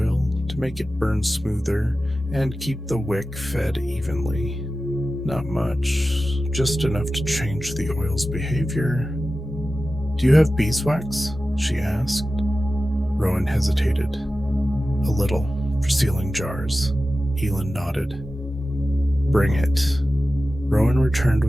to make it burn smoother and keep the wick fed evenly. Not much, just enough to change the oil's behavior. Do you have beeswax? She asked. Rowan hesitated. A little, for sealing jars. Aelin nodded. Bring it. Rowan returned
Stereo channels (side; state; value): both; normal; correlation 0.94